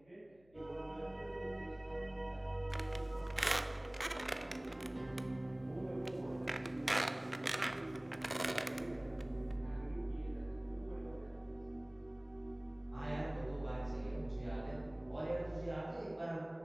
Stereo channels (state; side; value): noise; left; hum, 29 dB below the sound